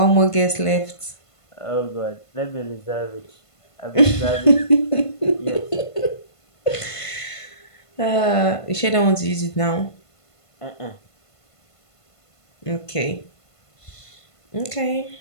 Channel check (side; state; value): right; late; 1.5 ms